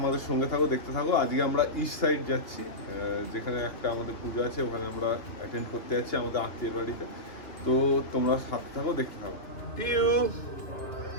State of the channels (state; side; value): late; right; 3.1 ms